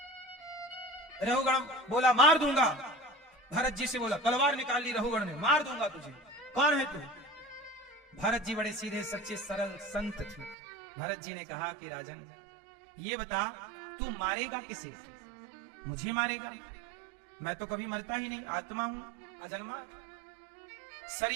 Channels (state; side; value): drops out; left; at 10.6 s